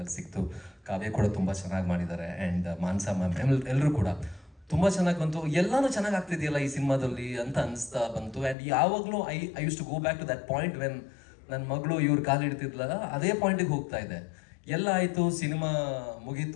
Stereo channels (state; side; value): drops out; right; at 8.6 s